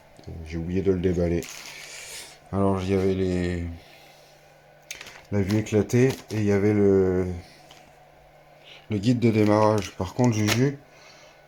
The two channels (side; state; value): both; identical; correlation 1.00